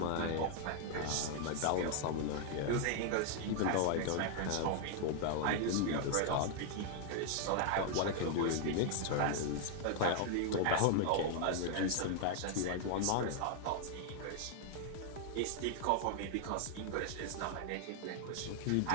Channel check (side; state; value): both; different; correlation 0.00